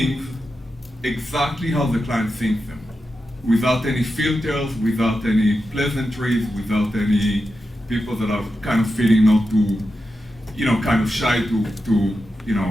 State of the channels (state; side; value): normal; both; correlation 0.89